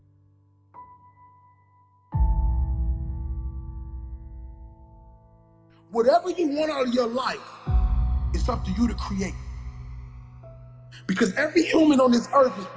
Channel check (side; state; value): both; identical; correlation 1.00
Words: Whatever you want out of your life, it's up to you to create. Because every human on this earth is